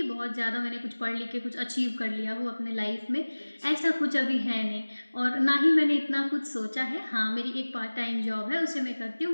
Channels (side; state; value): both; inverted; correlation -1.00